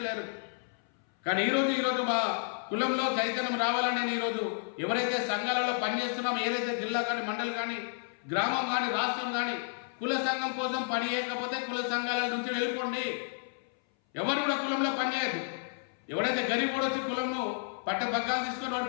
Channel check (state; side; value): silent; right; 57 dB below the other